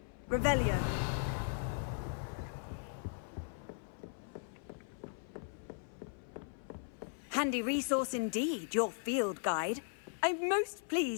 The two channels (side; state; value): right; silent; 53 dB below the other